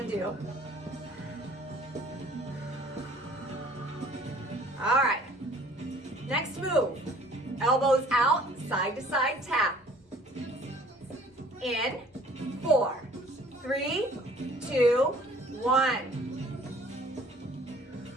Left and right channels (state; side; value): normal; both; correlation 0.54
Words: do. All right. Next move. Elbows out, side to side tap. In 4, 3, 2, 1.